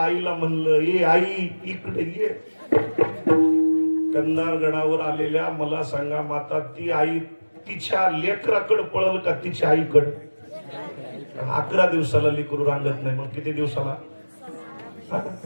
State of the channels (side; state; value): both; inverted; correlation -1.00